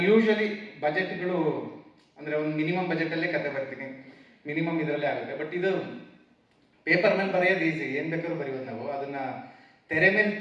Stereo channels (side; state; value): both; identical; correlation 1.00